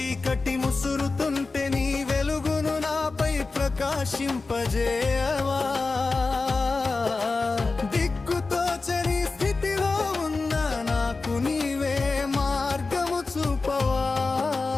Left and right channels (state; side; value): quieter; right; 3.8 dB